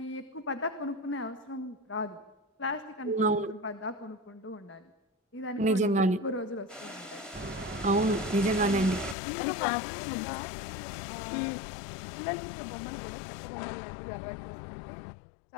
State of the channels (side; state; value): right; drops out; at 9.2 s